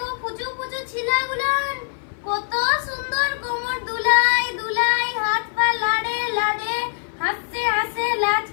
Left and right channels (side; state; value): right; silent; 56 dB below the other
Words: ফুচু ফুচু ছিলাগুলান কত সুন্দর কোমর দুলাই দুলাই, হাত পা লাড়ে লাড়ে, হাসছে হাসে লাজ